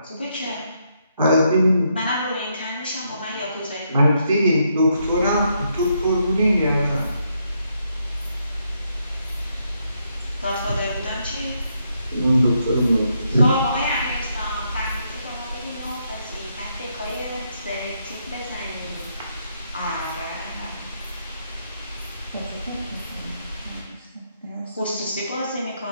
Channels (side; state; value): both; inverted; correlation -0.77